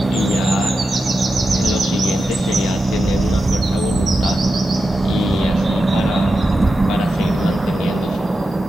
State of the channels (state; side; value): normal; both; correlation 0.90